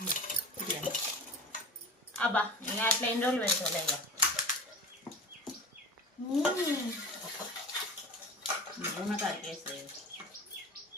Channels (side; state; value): both; normal; correlation 0.35